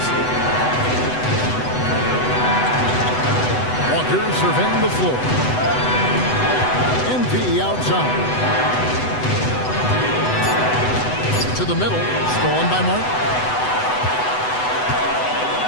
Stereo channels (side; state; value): right; late; 8.0 ms